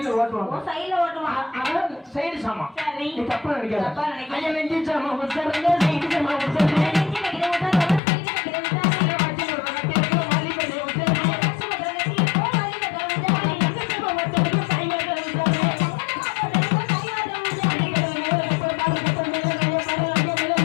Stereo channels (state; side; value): drops out; right; at 8.0 s